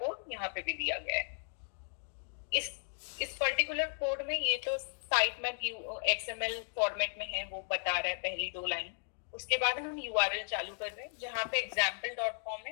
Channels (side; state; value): right; silent; digital silence